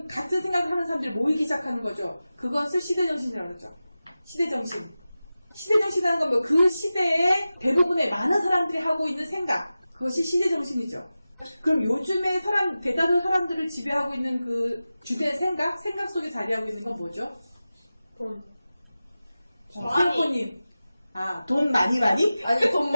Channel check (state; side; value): inverted; both; correlation -0.95